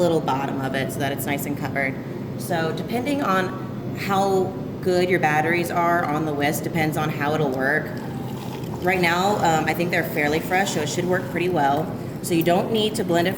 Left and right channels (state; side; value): identical; both; correlation 1.00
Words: bottom of it so that it's nice and covered. So depending on how good your batteries are on the whisk depends on how it'll work. Right now, I think they're fairly fresh, so it should work pretty well. So you don't need to blend it